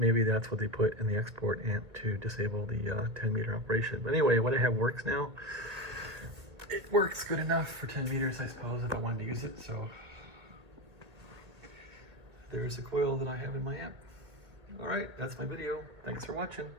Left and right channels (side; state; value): left; late; 1.7 ms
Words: that's what they put in the export amp to disable the 10 meter operation. But anyway, what I have works now. It works good enough for 10 meters, I suppose, if I wanted to use it. So there's a coil that I have in my amp. All right, that's my video. Thanks for watching.